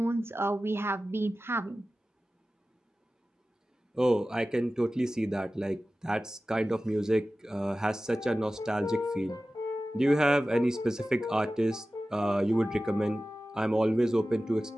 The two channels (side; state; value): both; normal; correlation 0.95